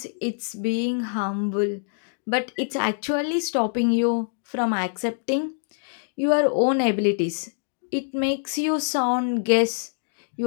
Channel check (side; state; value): right; silent; digital silence